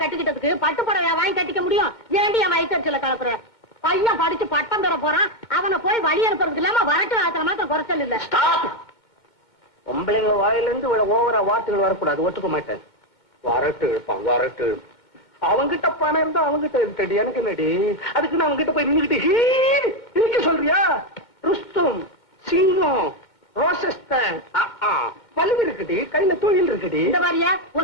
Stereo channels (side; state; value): right; late; 2.2 ms